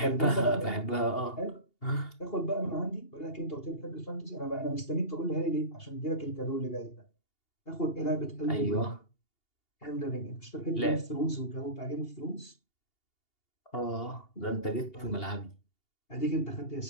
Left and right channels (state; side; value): late; right; 2.8 ms